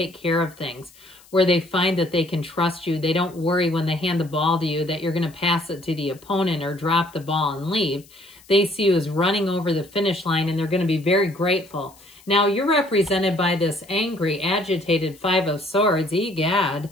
care of things, where they find that they can trust you. They don't worry when they hand the ball to you that you're going to pass it to the opponent or drop the ball and leave. They see you as running over the finish line and they're going to be very grateful. Now you're represented by this angry, agitated Five of Swords. Egad.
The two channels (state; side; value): noise; left; hiss, 26 dB below the sound